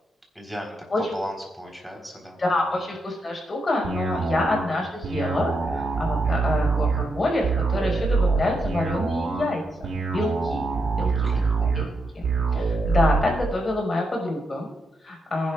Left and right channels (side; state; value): both; normal; correlation 0.82